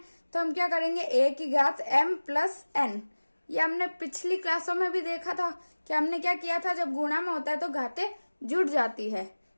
तो हम क्या करेंगे, a की घात m प्लस n। ये हमने पिछली क्लासों में भी देखा था कि हमने क्या किया था, जब गुणा में होता है तो घातें जुड़ जाती है।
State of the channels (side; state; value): both; inverted; correlation -1.00